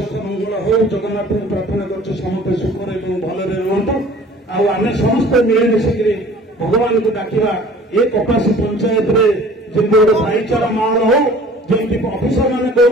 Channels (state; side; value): normal; both; correlation 0.48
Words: ମଙ୍ଗଳ ହଉ। ଜଗନ୍ନାଥଙ୍କୁ ପ୍ରାର୍ଥନା କରୁଛି ସମସ୍ତେ ସୁଖରେ ଏବଂ ଭଲରେ ରୁହନ୍ତୁ। ଆଉ ଆମେ ସମସ୍ତେ ମିଳିମିଶିକିରି भगवान को डाकिबा ए कपासी पंचायत रे जेमति गोटे भाईचारा माहौल हो जेमति अफिसर माने